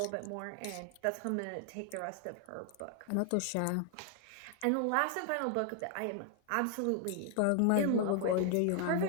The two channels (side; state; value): both; different; correlation 0.00